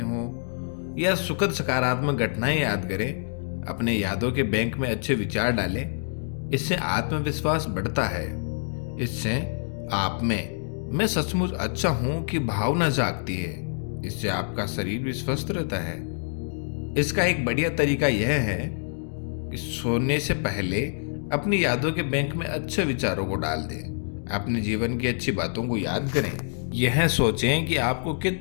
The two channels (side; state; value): right; silent; digital silence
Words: हों या सुखद सकारात्मक घटनाएं याद करें, अपने यादों के बैंक में अच्छे विचार डालें। इससे आत्मविश्वास बढ़ता है। इससे आप में मैं सचमुच अच्छा हूं की भावना जागती है। इससे आपका शरीर भी स्वस्थ रहता है। इसका एक बढ़िया तरीका यह है कि सोने से पहले अपनी यादों के बैंक में अच्छे विचारों को डाल दें। अपने जीवन की अच्छी बातों को याद करें। यह सोचें कि आपको